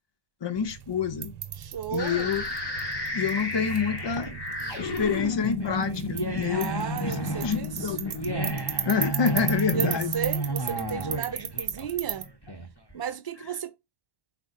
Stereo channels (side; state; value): right; late; 1.0 ms